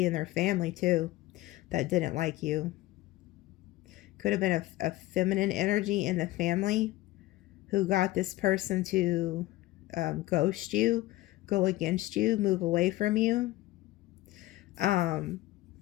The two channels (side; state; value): right; quieter; 17.3 dB